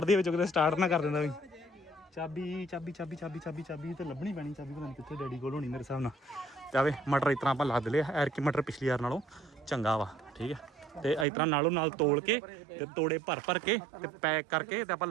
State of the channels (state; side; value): drops out; left; at 11.2 s